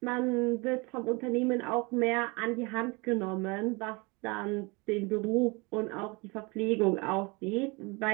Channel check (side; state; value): left; quieter; 27.7 dB